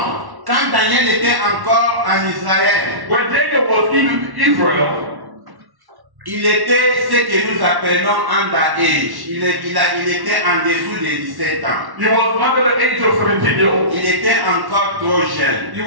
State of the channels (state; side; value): late; left; 1.1 ms